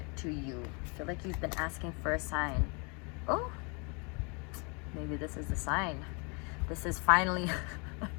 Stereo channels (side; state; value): right; quieter; 33.5 dB